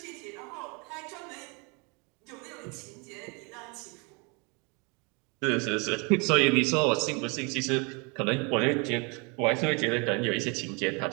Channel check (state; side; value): quieter; left; 31.6 dB